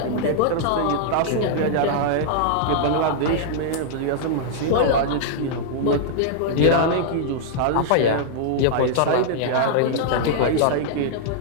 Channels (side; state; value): both; different; correlation -0.01